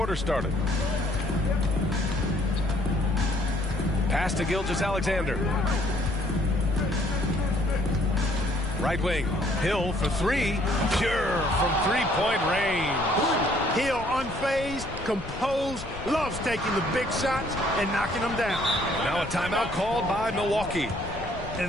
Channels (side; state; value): left; noise; rumble, 11 dB below the sound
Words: started. Pass to Gilgeous-Alexander. Right wing. Hill for 3. Pure from three-point range. Hill unfazed, composed, loves taking the big shots and knocking them down. Now a timeout called by Milwaukee.